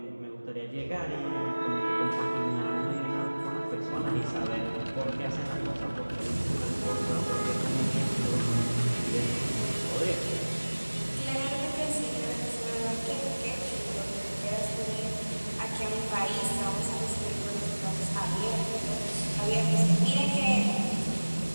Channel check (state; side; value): inverted; both; correlation -1.00